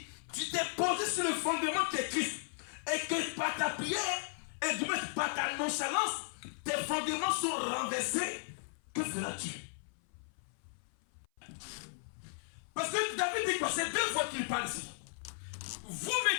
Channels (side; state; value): right; silent; 54 dB below the other